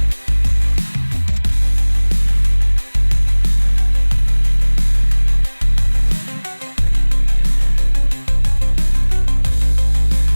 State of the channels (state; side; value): inverted; both; correlation -1.00